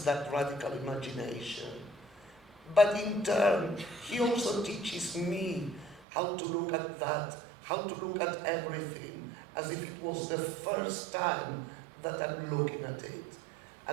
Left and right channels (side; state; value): left; drops out; at 6.1 s